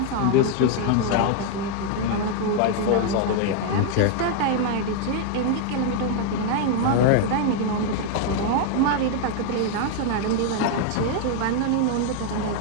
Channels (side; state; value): both; different; correlation 0.00